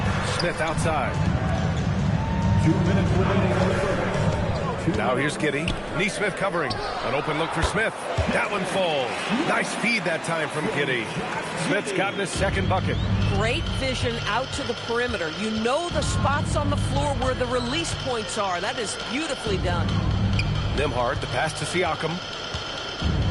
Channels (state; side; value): identical; both; correlation 1.00